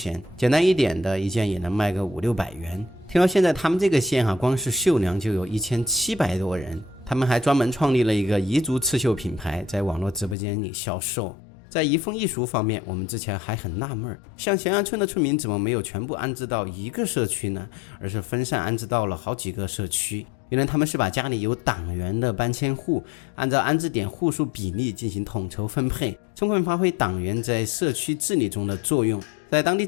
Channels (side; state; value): right; drops out; at 10.4 s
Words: 简单一点的一件也能卖个500-600元。听到现在他们这个县光是绣娘就有1700多人，他们还专门创立了一个彝族刺绣品牌，在网络直播间里销售。在移风易俗方面，我们之前还很纳闷，像咸阳村的村民怎么没有全部安置到一个社区呢？而是分散安置到了好几个社区。原来他们是把家里有党员的搬迁户按照安置点户数比例进行统筹分配，充分发挥党员在社区治理中的作用。在当地